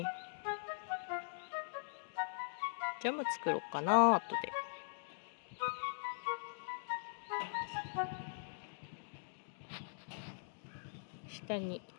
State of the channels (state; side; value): silent; right; digital silence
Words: ジャム作ろうかな、後で。下に